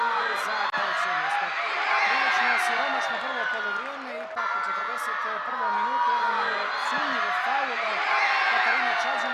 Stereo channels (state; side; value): identical; both; correlation 1.00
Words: igri za treće mjesto. Prilično siromašno prvo polovrijeme, ipak u 41. minutu jedan sumnjiv faul Katarine